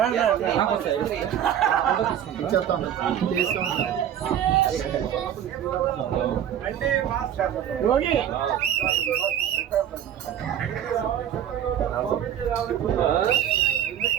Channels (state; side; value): quieter; left; 10.1 dB